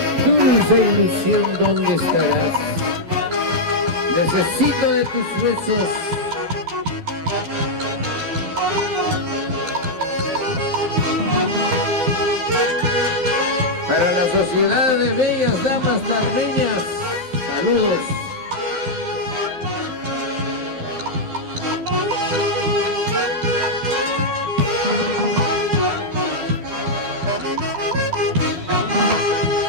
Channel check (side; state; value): left; late; 12 ms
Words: Dulce ilusión, ¿dónde estarás? Necesito de tus besos. Para la sociedad de bellas damas tarreñas, saludos.